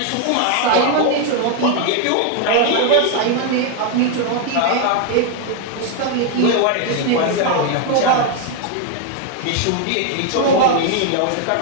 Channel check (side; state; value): both; different; correlation 0.00